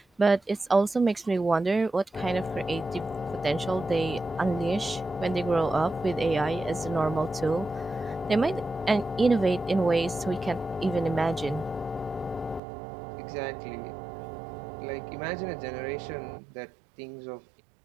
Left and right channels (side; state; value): left; drops out; at 12.6 s